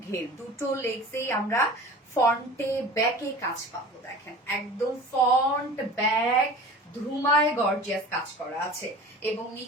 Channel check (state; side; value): normal; both; correlation 0.40